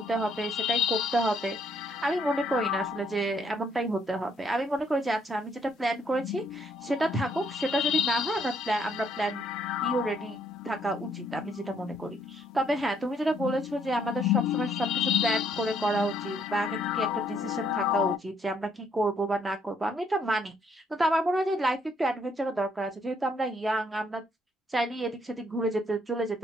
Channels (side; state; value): both; normal; correlation 0.69